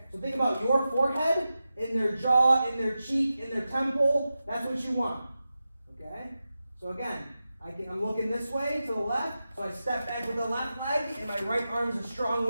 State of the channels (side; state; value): both; inverted; correlation -0.92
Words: So think about your forehead in their jaw, in their cheek, in their temple. That's what you want. Okay? So again, I'm looking this way to the left, so I step back with the left leg, and my right arm is a strong